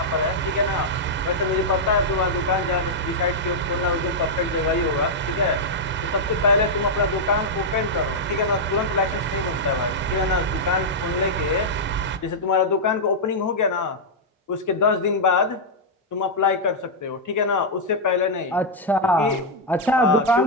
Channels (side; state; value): both; normal; correlation -0.05